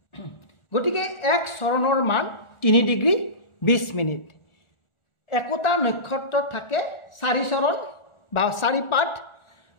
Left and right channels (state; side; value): late; right; 1.4 ms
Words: গতিকে এক চৰণৰ মান 3 ডিগ্ৰী 20 মিনিট। একোটা নক্ষত্ৰত থাকে 4 চৰণ বা 4 পাদ